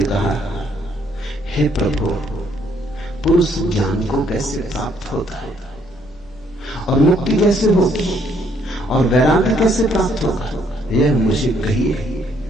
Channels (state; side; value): normal; both; correlation 0.68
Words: कहा, हे प्रभु, पुरुष ज्ञान को कैसे प्राप्त होता है और मुक्ति कैसे होगी और वैराग्य कैसे प्राप्त होगा, यह मुझे कहिए।